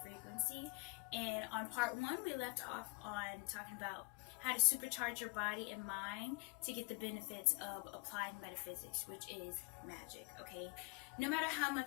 Frequency. And on part 1, we left off on talking about how to supercharge your body and mind to get the benefits of applied metaphysics, which is magic, okay? No matter how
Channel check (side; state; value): right; quieter; 29.9 dB